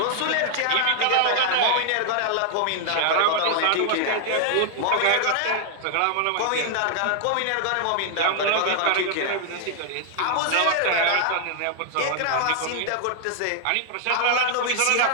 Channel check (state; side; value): different; both; correlation 0.00